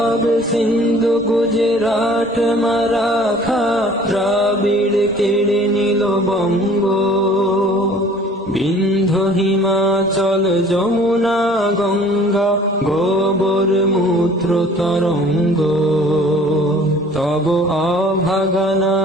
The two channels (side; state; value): both; normal; correlation 0.51